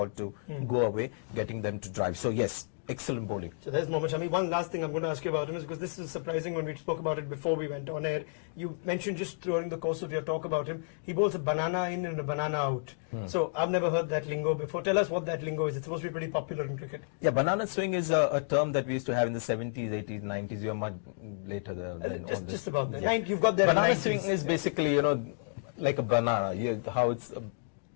to go away, getting them to drive. So yes, excellent bowling. So there's Mohammad Shami. One last thing I'm going to ask you about him is, because this is surprising when we spoke about it before we went on air. You mentioned just during the course of your talk about him, he bowls a banana in and a banana out. So I've never heard that lingo before. Tell us what that lingo is. It's supposed to be pretty popular in cricket. Yeah, banana swing is a term that we used to have in the 70s, 80s, 90s. You're much later than just about that. You've got that. Banana swing is basically, like a banana. How it's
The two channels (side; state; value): right; silent; digital silence